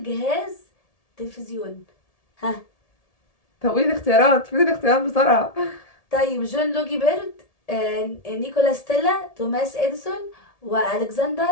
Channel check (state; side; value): late; right; 1.7 ms